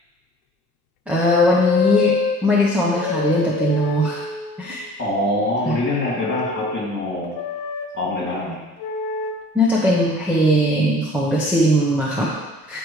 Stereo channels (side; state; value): both; normal; correlation 0.49